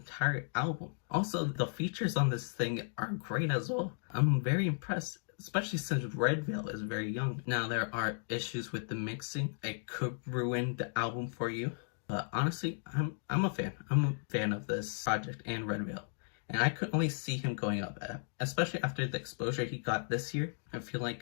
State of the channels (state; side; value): silent; right; digital silence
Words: album. Also, the features on this thing are great as well. I'm very impressed, especially since redveil is very young. Now, there are issues with the mixing. It could ruin the album for you, but honestly, I'm a fan. I'm a fan of this project and redveil. And I could only see him going up, especially after the exposure he got this year. I feel